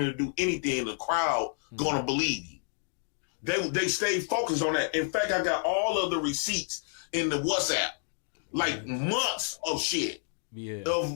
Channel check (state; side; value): silent; right; digital silence